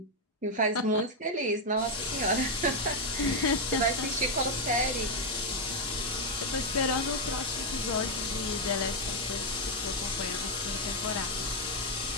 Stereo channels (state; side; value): normal; both; correlation 0.02